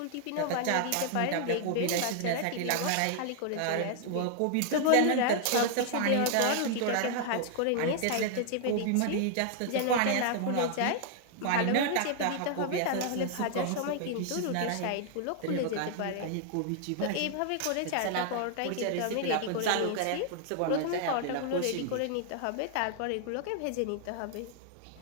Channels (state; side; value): different; both; correlation 0.00